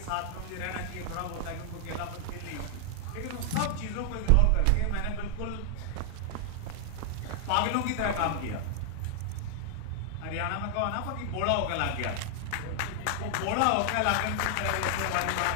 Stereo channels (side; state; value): both; different; correlation 0.00